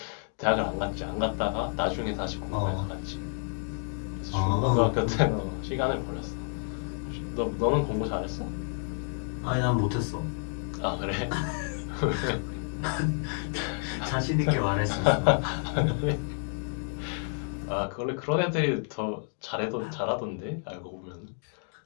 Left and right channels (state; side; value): silent; right; 58 dB below the other